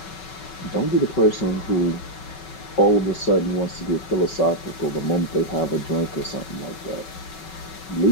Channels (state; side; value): late; right; 5.3 ms